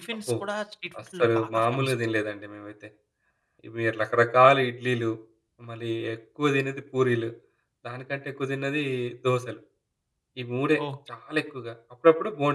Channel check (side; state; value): both; identical; correlation 1.00